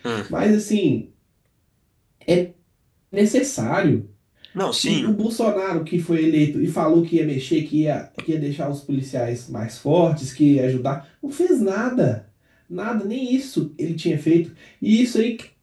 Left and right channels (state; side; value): identical; both; correlation 1.00